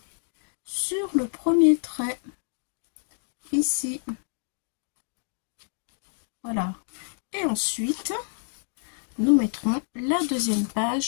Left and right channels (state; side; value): silent; right; digital silence